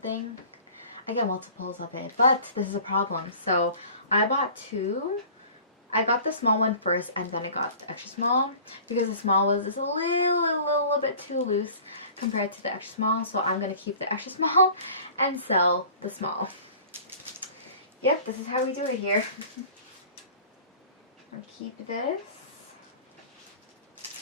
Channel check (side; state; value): both; inverted; correlation -0.45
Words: I get multiples of it. But this is a problem. So I bought two. I got the small one first and then I got the extra small because the small was just a little bit too loose compared to the extra small. So I'm going to keep the extra small and sell the small. Yep, this is how we do it here. I'll keep this.